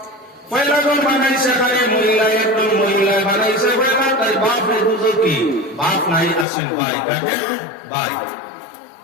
পয়লা জন বানাইছে খালি মহিলা একজন মহিলা বানাইছে পয়লা তাই বাপ দুজো কি বাপ নাই আসেন ভাই কাটে ভাই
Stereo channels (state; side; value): drops out; right; at 6.5 s